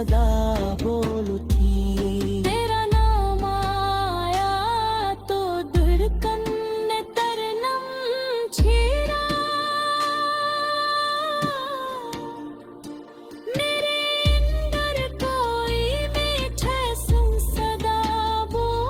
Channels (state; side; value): identical; both; correlation 1.00